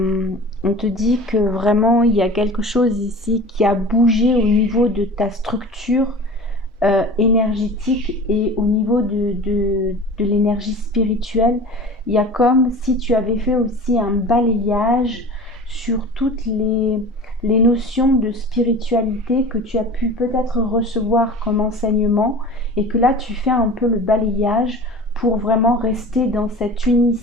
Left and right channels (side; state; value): both; normal; correlation 0.37